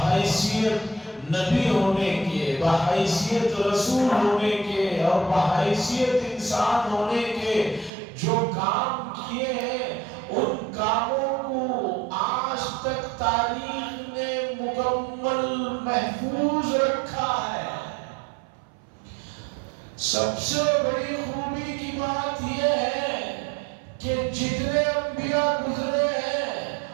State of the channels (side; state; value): left; drops out; at 7.9 s